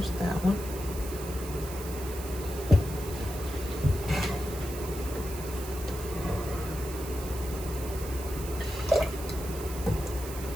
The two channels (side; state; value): right; noise; hiss, 12 dB below the sound